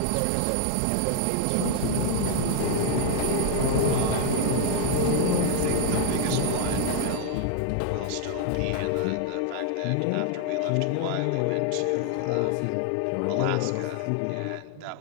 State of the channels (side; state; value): both; different; correlation 0.00